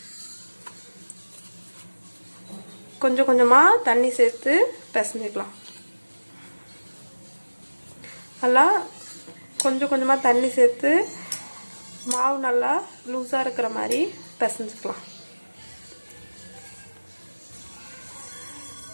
கொஞ்சம் கொஞ்சமாக தண்ணி சேர்த்து பிசைஞ்சிக்கலாம். நல்லா கொஞ்சம் கொஞ்சமாக தண்ணி சேர்த்து மாவு நல்லா லூஸாக இருக்கிற மாதிரி பிசைஞ்சிக்கலாம்.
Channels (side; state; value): both; inverted; correlation -1.00